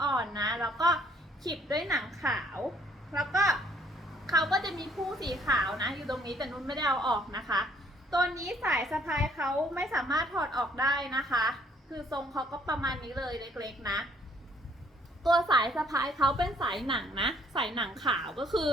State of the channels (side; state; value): both; normal; correlation 0.63